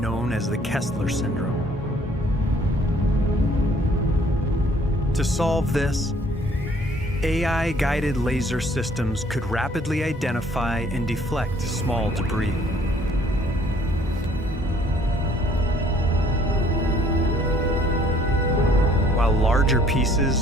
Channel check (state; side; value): normal; both; correlation 0.59